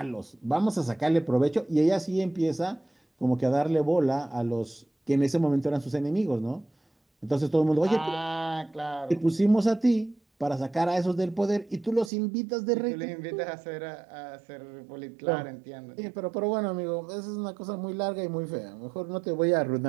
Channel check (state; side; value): drops out; left; at 12.1 s